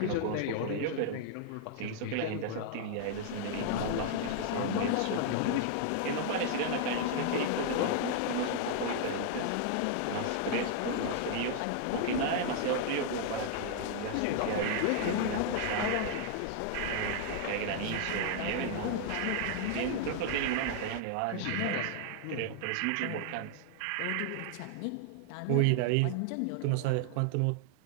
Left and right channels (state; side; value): different; both; correlation 0.00